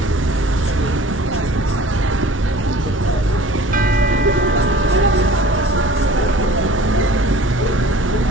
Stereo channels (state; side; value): normal; both; correlation 0.46